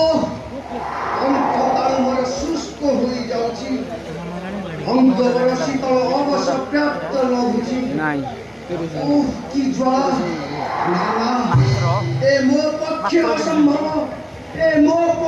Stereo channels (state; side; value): identical; both; correlation 1.00